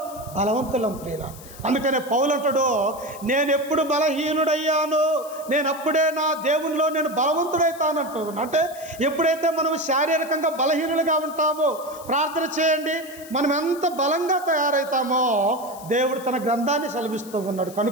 బలవంతులం ప్రియుల. అందుకనే పౌలు అంటాడు, నేను ఎప్పుడు బలహీనుడయ్యాను నేను అప్పుడే నా దేవునిలో నేను బలవంతుడైతానంటూ. అంటే ఎప్పుడైతే మనం శారీరకంగా బలహీనులుగా ఉంటామో, ప్రార్థన చేయండి, మనం ఎంత బలంగా తయారవుతామో దేవుడు తన గ్రంథాన్ని సెలవిస్తూ ఉన్నాడు.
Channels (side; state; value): left; noise; hiss, 18 dB below the sound